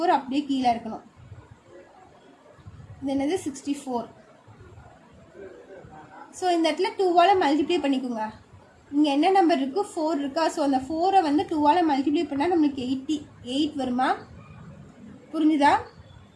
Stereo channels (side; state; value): both; identical; correlation 1.00